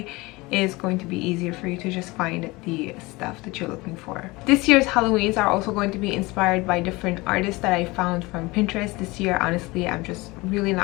it's going to be easier for you to just find the stuff that you're looking for. This year's Halloweens are also going to be inspired by different artists that I found from Pinterest. This year, honestly, I'm just really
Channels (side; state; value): right; quieter; 22.8 dB